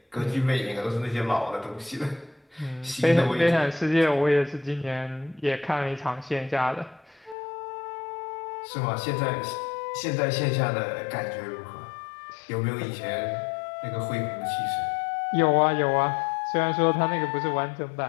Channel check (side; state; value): right; drops out; at 7.4 s